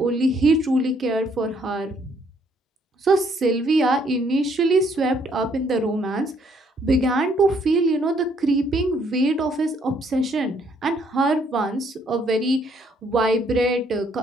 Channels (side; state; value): both; normal; correlation 0.67